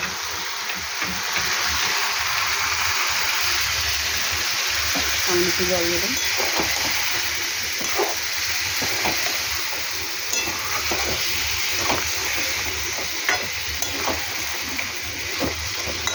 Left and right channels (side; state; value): both; identical; correlation 1.00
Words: আমি একটু জল দেবেন।